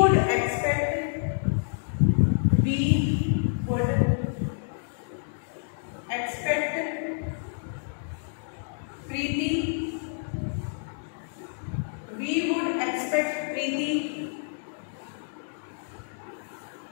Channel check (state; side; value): silent; right; digital silence